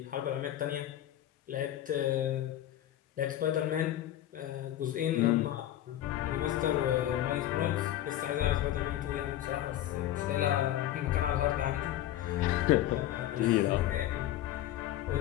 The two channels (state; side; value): quieter; right; 12.9 dB